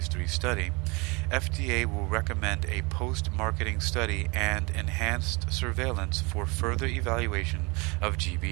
3 study, FDA will recommend a post-marketing study and enhanced surveillance for further evaluation of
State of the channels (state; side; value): quieter; left; 28.0 dB